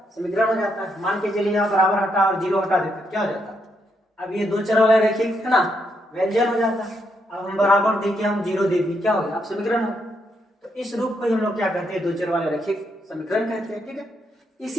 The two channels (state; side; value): normal; both; correlation 0.78